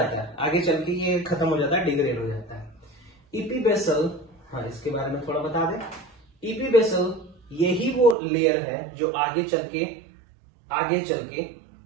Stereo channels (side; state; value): left; drops out; at 8.2 s